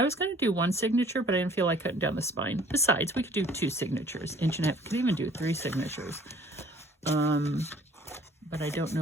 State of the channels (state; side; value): normal; both; correlation 0.54